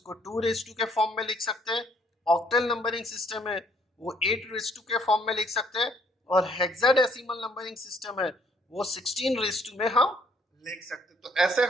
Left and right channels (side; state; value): both; normal; correlation 0.65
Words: 2⁻² के फॉर्म में लिख सकते हैं, ऑक्टल नंबरिंग सिस्टम है वो 8⁻² के फॉर्म में लिख सकते हैं, और हेक्साडेसिमल नंबरिंग सिस्टम है वो 16⁻² में हम लिख सकते हैं। तो ऐसे